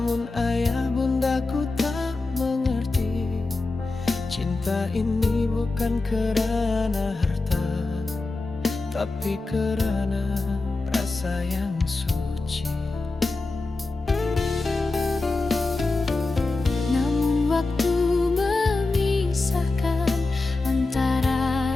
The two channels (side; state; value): right; quieter; 3.4 dB